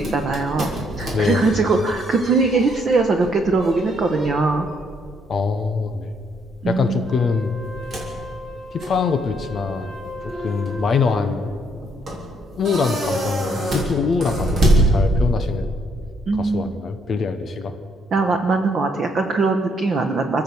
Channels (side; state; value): both; normal; correlation 0.70